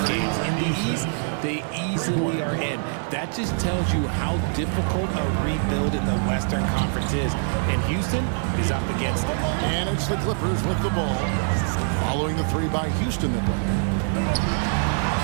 games. In the East, they easily are in. That just tells you how difficult a rebuild in the Western Conference is. And Houston is up against it. And it's the Clippers with the ball, following the 3 by Houston that way.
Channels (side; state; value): left; silent; digital silence